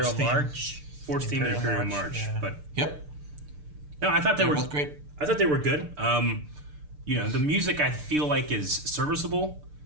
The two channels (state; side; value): late; left; 6.7 ms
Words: March. Force theme and Imperial March. Yeah. But Yep. no, I thought they were both great. I thought they were good. You know, the music I feel like is serviceable